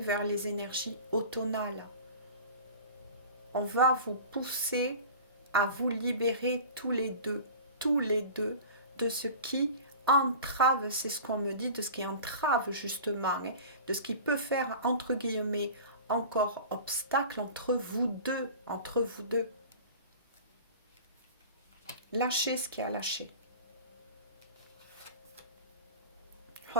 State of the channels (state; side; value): inverted; both; correlation -0.38